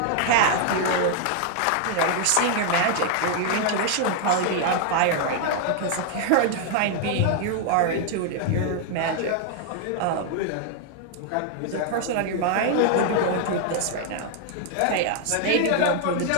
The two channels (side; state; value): both; different; correlation 0.00